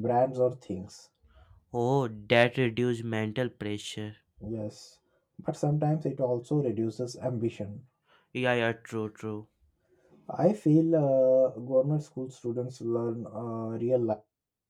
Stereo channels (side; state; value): both; identical; correlation 1.00